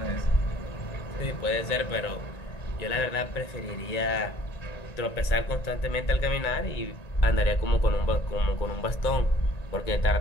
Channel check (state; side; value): late; right; 1.9 ms